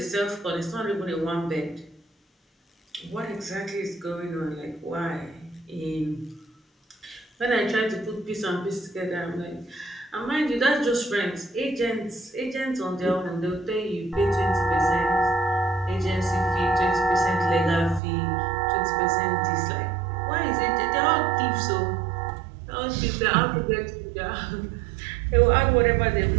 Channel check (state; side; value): drops out; left; at 18.0 s